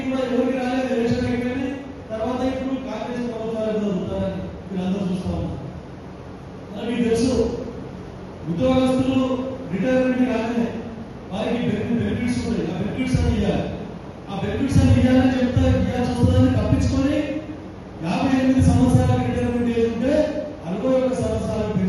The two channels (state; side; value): identical; both; correlation 1.00